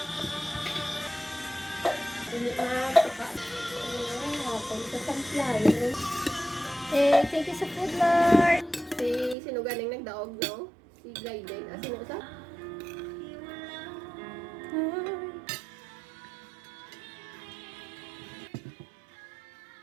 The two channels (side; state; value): left; drops out; at 9.3 s